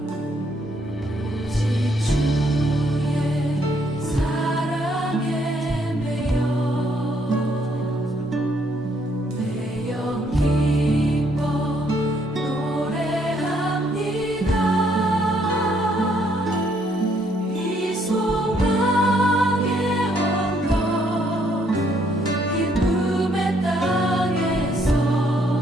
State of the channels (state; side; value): normal; both; correlation 0.69